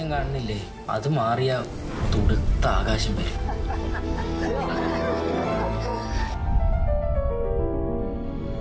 കാണുന്നില്ലേ, അത് മാറിയ തുടുത്ത ആകാശം വരും.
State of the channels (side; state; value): both; identical; correlation 1.00